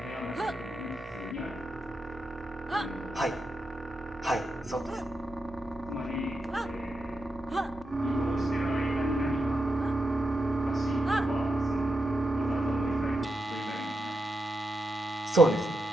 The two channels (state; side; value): normal; both; correlation 0.86